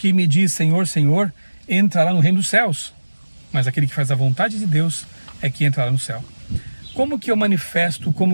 me diz Senhor, Senhor, entrará no reino dos céus, mas aquele que faz a vontade de Deus é que entrará no céu. Como que eu manifesto,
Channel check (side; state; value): both; inverted; correlation -1.00